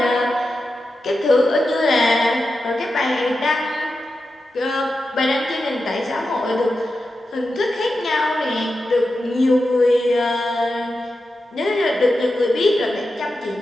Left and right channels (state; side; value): normal; both; correlation 0.90